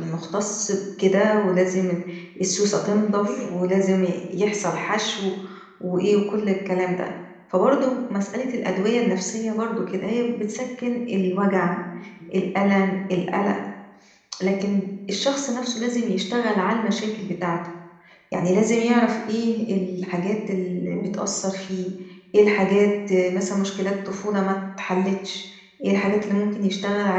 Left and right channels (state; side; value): identical; both; correlation 1.00